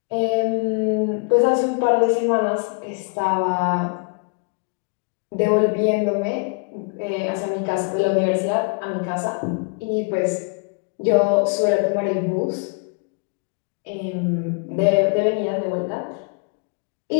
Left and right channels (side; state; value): right; quieter; 35.2 dB